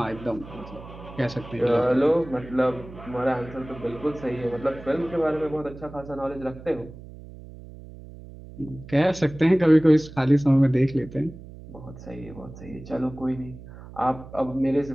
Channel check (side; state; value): right; noise; hum, 16 dB below the sound